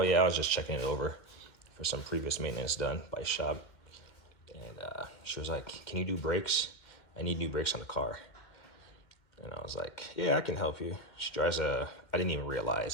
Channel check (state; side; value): late; right; 2.1 ms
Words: yeah, I was just checking it over for some previous maintenance done by shop." And she was like, "Can you do brakes? I need new brakes on the car." And I was like, "Yeah, I can help you." She drives I didn't even